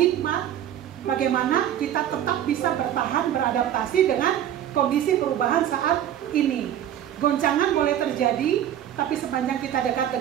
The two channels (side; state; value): left; quieter; 10.9 dB